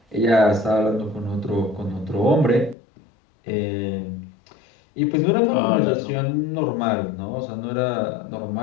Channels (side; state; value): right; drops out; at 2.8 s